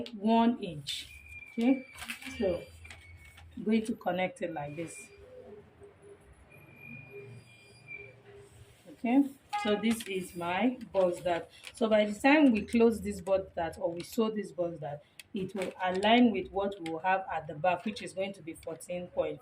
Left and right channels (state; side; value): identical; both; correlation 1.00